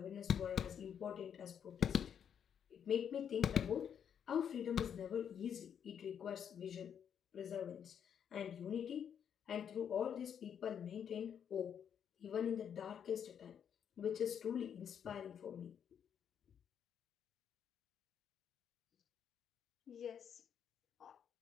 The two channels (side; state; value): right; quieter; 8.3 dB